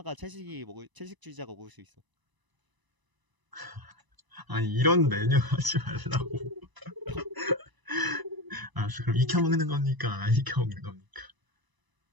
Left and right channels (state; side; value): late; left; 1.0 ms